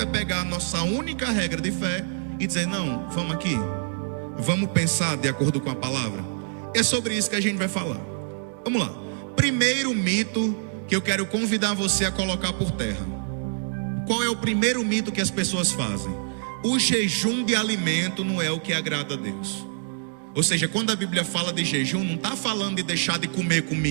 é pegar a nossa única regra de fé e dizer: não, vamos aqui, vamos pensar de acordo com a palavra. É sobre isso que a gente vai falar. Vamos lá. Primeiro mito que eu quero convidar você a colocar por terra. Qual é o primeiro mito que as pessoas fazem? O jejum de alimento não é o que agrada a Deus. Ou seja, quando a Bíblia fala de jejum, não está falando de deixar de comer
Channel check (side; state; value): left; silent; digital silence